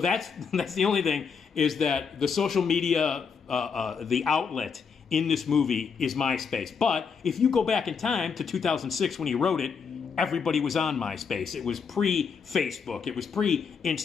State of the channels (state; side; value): quieter; right; 6.0 dB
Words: the only thing, is that the social media, the outlet in this movie is MySpace. But if you go back in time to 2006 when he wrote it, everybody was on MySpace. It was pre-Facebook. It was